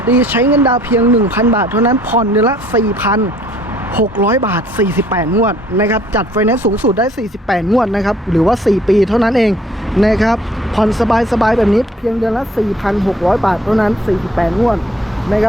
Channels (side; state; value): both; normal; correlation 0.58